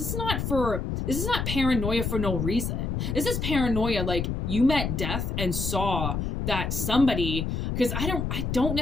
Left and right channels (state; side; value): noise; left; rumble, 2 dB below the sound